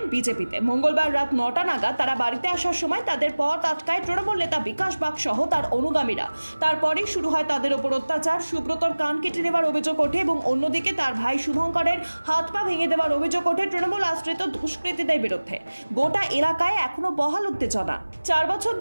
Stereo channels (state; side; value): inverted; both; correlation -1.00